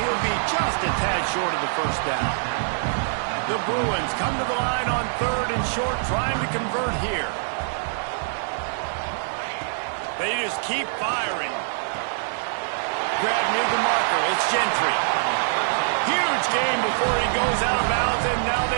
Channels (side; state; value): left; silent; digital silence